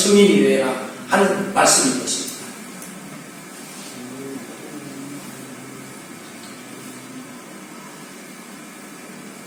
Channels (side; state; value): both; identical; correlation 1.00